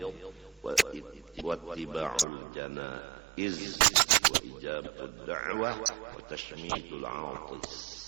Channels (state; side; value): drops out; left; at 2.2 s